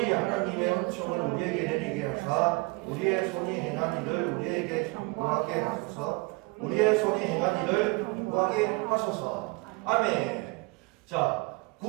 하나님의 은총을 우리에게 내리게 하사 우리의 손이 행한 일을 우리에게 경고하게 하소서. 우리의 손이 행한 일을 경고하게 하소서. 아멘. 자,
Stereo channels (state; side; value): quieter; left; 26.9 dB